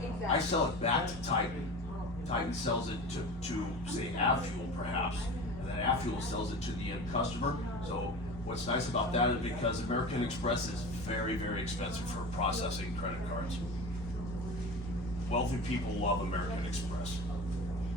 I sell it back to Titan. Titan sells it to say Avfuel perhaps, and then Avfuel sells it to the end customer. So what's nice about that is because American Express is very, very expensive for processing credit cards. Wealthy people love American Express.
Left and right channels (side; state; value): both; normal; correlation 0.32